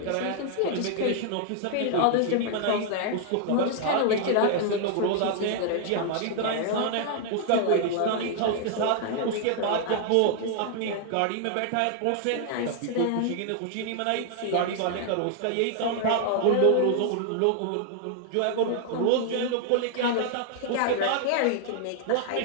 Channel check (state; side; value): different; both; correlation 0.00